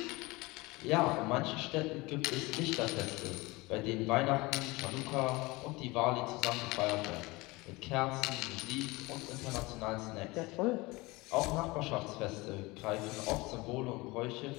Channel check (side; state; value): right; quieter; 22.9 dB